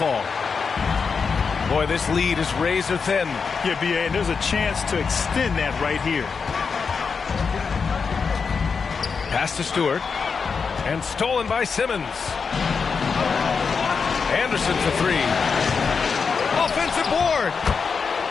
Boy, this lead is razor thin. Yeah, B.A., and there's a chance to extend that right here. Pass to Stewart. And stolen by Simmons. Anderson for 3. Offensive board.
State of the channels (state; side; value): quieter; right; 5.5 dB